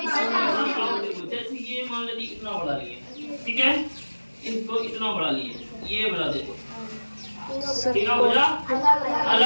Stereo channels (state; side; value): inverted; both; correlation -1.00